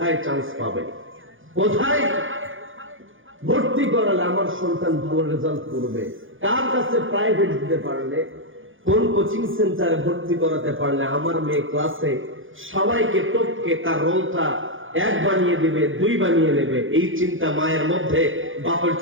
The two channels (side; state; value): left; late; 0.58 ms